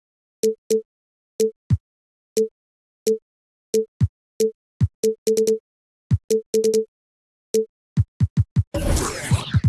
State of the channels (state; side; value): identical; both; correlation 1.00